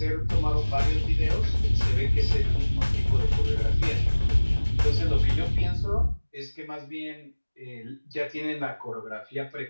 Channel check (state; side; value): inverted; both; correlation -1.00